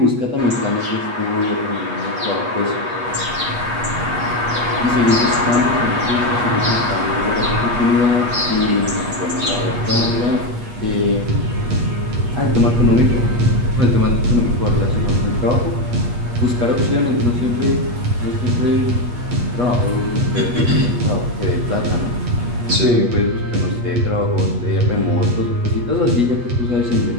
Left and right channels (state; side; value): late; left; 8.3 ms